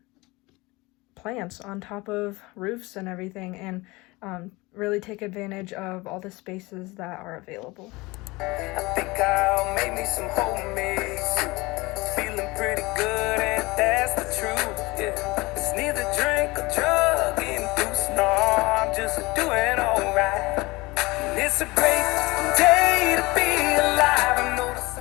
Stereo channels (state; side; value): quieter; right; 22.9 dB